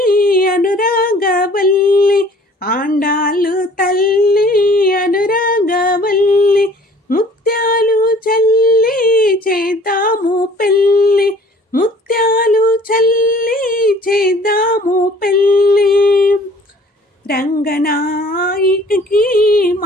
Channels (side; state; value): both; normal; correlation 0.52